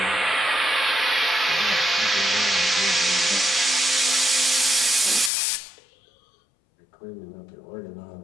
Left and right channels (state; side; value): drops out; right; at 5.3 s